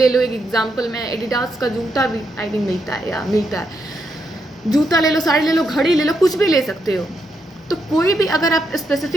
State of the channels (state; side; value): normal; both; correlation 0.80